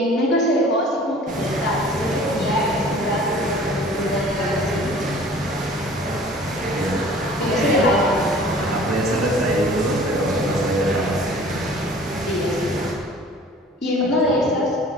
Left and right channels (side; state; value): both; normal; correlation 0.48